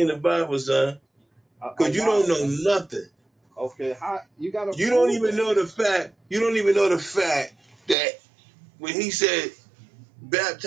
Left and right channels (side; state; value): left; drops out; at 8.0 s